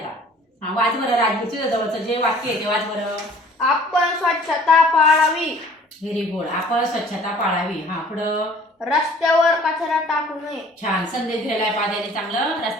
हा वाच बरं राजवीर, तुझ्या जवळचं जे वाक्य आहे ते वाच बरं. आपण स्वच्छता पाळावी. Very good. आपण स्वच्छता पाळावी. हा पुढं. रस्त्यावर कचरा टाकू नये. छान संदेश दिलेला आहे पाद्याने चांगलं.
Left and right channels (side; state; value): both; normal; correlation 0.52